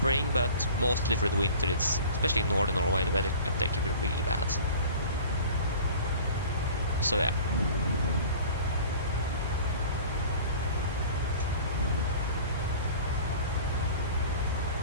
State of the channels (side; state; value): both; inverted; correlation -0.42